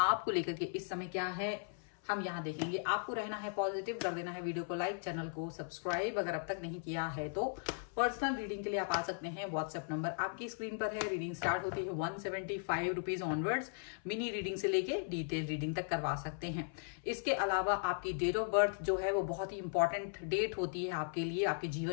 लेकर के इस समय क्या है हम यहाँ देखेंगे। आपको रहना है पॉजिटिव, कर देना है वीडियो को लाइक, चैनल को सब्सक्राइब अगर अब तक नहीं किया है तो। पर्सनल रीडिंग के लिए आप आ सकते हैं, व्हाट्सएप नंबर आपकी स्क्रीन पर है। रीडिंग स्टार्ट होती है 175 रुपीज ऑनवर्ड्स। मिनी रीडिंग से लेके डिटेल रीडिंग तक करवा सकते हैं। इसके अलावा आपकी डेट ऑफ बर्थ जो है वो बहुत ही इंपॉर्टेंट डेट होती है आपके लिए, आपके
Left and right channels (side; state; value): right; silent; 53 dB below the other